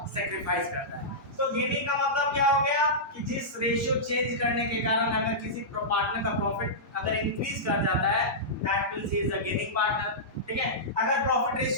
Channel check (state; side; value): normal; both; correlation -0.14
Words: सैक्रिफाइस करता है। तो गेनिंग का मतलब क्या हो गया कि जिस रेशियो चेंज करने के कारण अगर किसी पार्टनर का प्रॉफिट अगर इंक्रीज कर जाता है that means he is a gaining partner, ठीक है। अगर प्रॉफिट